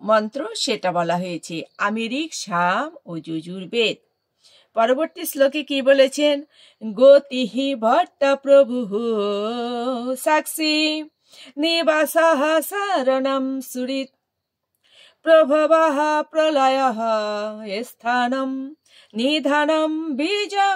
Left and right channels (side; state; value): both; identical; correlation 1.00